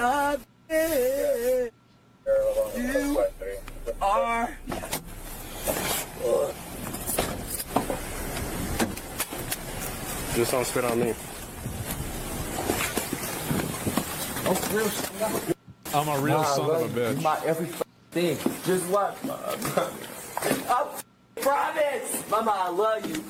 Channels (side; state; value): both; identical; correlation 1.00